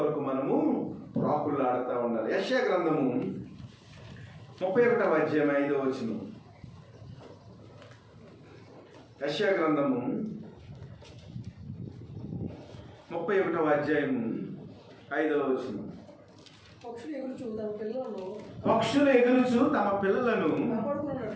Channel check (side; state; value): both; identical; correlation 1.00